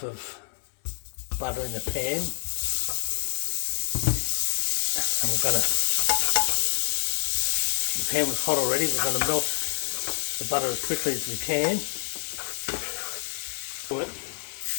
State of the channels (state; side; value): silent; right; digital silence